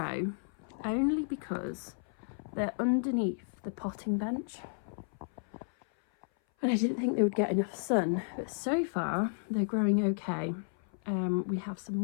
only because they're underneath the potting bench. And I didn't think they would get enough sun, but so far they're growing okay. We have some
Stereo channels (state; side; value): silent; right; 56 dB below the other